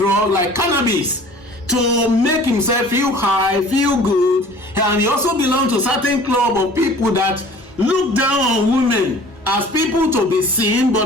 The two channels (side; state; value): both; normal; correlation 0.47